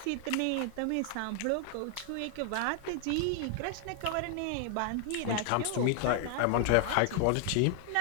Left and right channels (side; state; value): both; different; correlation 0.00